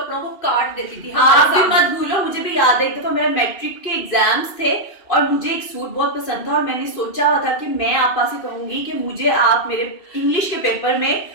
को काट देती थी आप हमारे भी सामने। मत भूलो, मुझे भी याद है एक दफा मेरा मैट्रिक के एग्जाम्स थे और मुझे एक सूट बहुत पसंद था और मैंने सोचा हुआ था कि मैं आपा से कहूंगी कि मुझे आप मेरे इंग्लिश के पेपर में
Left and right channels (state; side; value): late; right; 2.6 ms